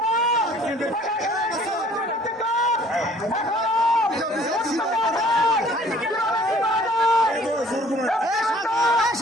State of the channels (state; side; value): normal; both; correlation 0.55